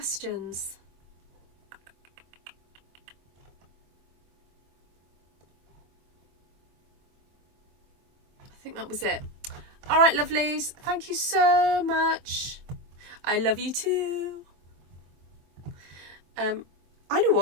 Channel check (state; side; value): late; left; 24 ms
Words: I think that was it. All right, lovelies. Thank you so much. I love you too. I know